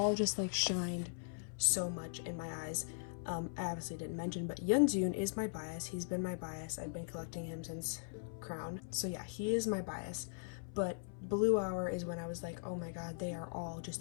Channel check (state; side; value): silent; right; 51 dB below the other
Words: just like shined so much in my eyes. I obviously didn't mention, but Yeonjun is my bias. He's been my bias. I've been collecting him since Crown. So yeah, he is my bias. But Blue Hour is when I was like, oh my god, they are all